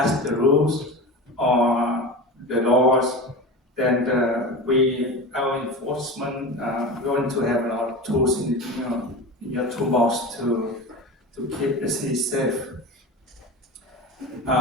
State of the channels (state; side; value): normal; both; correlation 0.29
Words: the rules or the laws, then our enforcement going to have a lot of tools in your toolbox to keep the city safe.